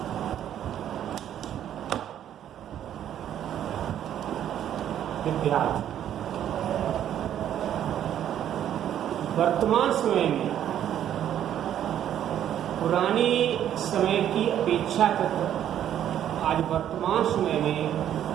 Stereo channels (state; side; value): quieter; left; 10.6 dB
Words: विद्यार्थी वर्तमान समय में पुरानी समय की अपेक्षा आज वर्तमान समय में